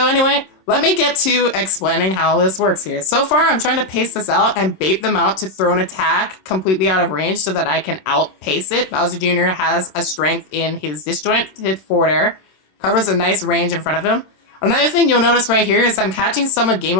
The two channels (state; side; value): late; right; 27 ms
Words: anyway, let me get to explaining how this works here. So far, I'm trying to pace this out and bait them out to throw an attack completely out of range so that I can outpace it. Bowser Jr. has a strength in his disjointed forward air. Covers a nice range in front of him. Another thing you'll notice right here is I'm catching some of